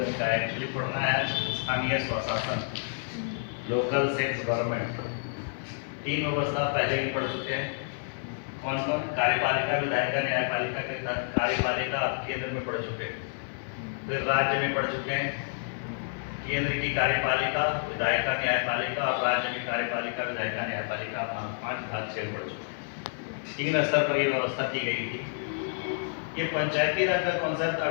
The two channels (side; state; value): right; silent; 58 dB below the other